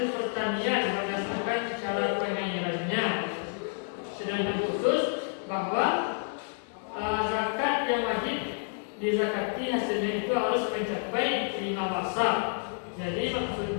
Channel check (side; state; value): right; silent; 58 dB below the other